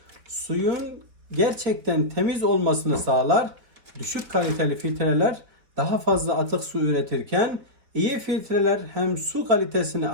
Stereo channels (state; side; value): late; left; 4.2 ms